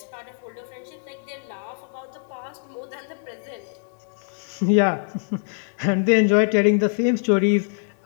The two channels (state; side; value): silent; right; digital silence